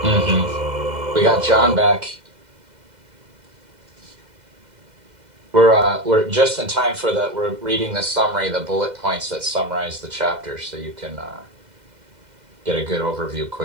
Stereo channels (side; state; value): left; late; 2.0 ms